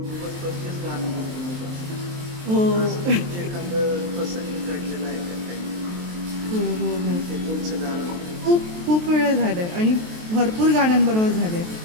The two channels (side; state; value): left; late; 23 ms